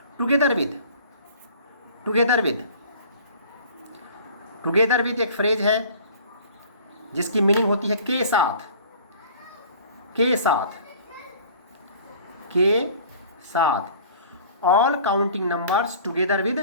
together with, together with, together with एक फ्रेज है जिसकी मीनिंग होती है के साथ, के साथ, के साथ। All counting numbers together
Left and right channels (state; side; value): inverted; both; correlation -0.48